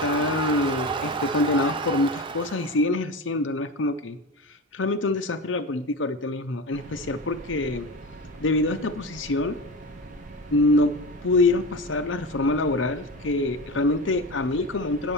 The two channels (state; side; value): normal; both; correlation 0.25